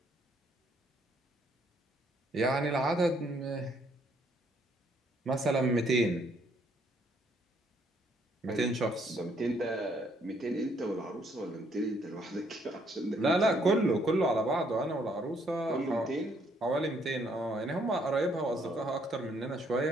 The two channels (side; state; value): both; normal; correlation 0.68